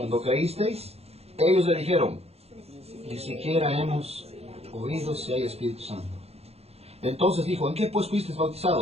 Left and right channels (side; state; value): left; late; 0.30 ms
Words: creísteis. Ellos le dijeron, ni siquiera hemos oído si hay Espíritu Santo. Entonces dijo, ¿en qué pues fuisteis